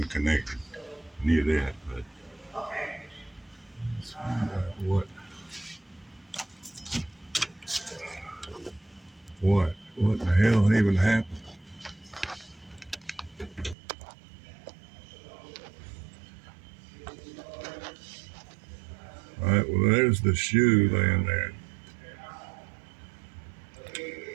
connected near that, but let's find out what the hell even happened. All right, well, there's the shoe laying there.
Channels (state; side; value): drops out; left; at 13.8 s